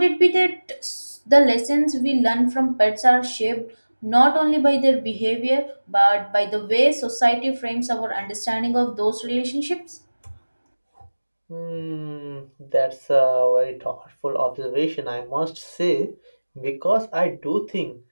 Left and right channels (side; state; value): both; inverted; correlation -1.00